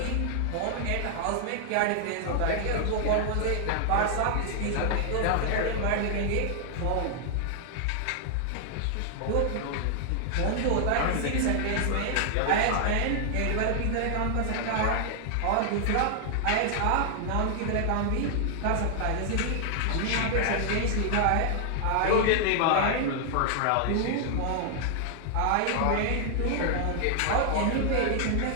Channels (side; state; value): both; different; correlation 0.00